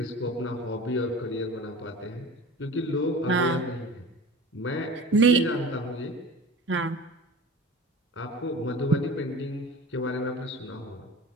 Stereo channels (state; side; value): normal; both; correlation 0.37